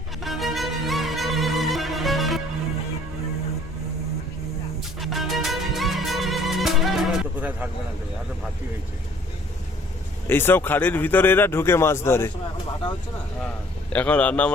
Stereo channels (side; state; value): both; normal; correlation 0.57